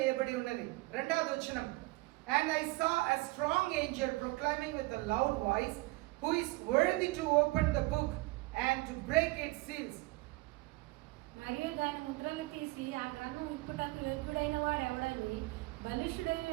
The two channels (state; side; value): quieter; left; 22.4 dB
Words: ఉన్నది. 2వ వచనం. And I saw a strong angel proclaiming with a loud voice, who is worthy to open the book and to break its seals. మరియు దాని ముద్రలు తీసి ఆ గ్రంథం విప్పుటకు యోగ్యుడైన వాడు ఎవడని బలిష్ఠుడైన